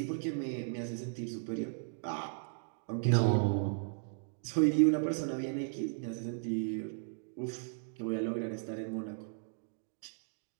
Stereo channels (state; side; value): silent; left; digital silence